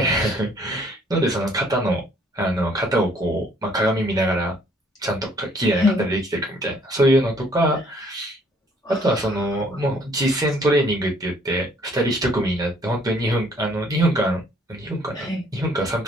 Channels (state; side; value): normal; both; correlation 0.62